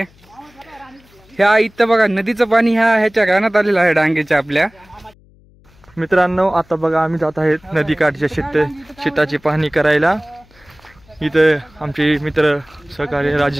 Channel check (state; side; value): noise; left; hum, 29 dB below the sound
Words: ह्या इथं बघा नदीचं पाणी ह्याच्या रानात आलेलं आहे डांगेच्या आपल्या। मित्रांनो, आता बघा आम्ही जात आहेत नदीकाठच्या शेताची पाहणी करायला। इथं आमचे मित्र सहकारी